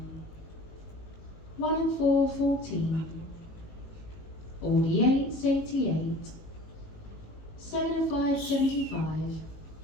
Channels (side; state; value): right; late; 19 ms